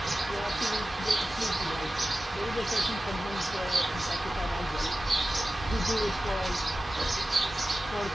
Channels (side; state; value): both; normal; correlation 0.95